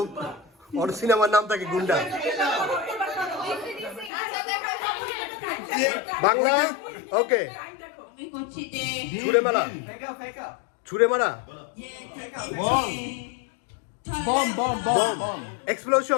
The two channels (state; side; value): drops out; right; at 4.1 s